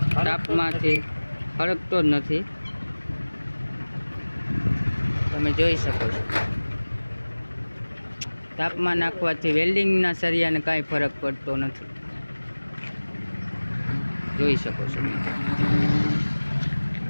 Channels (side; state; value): both; inverted; correlation -1.00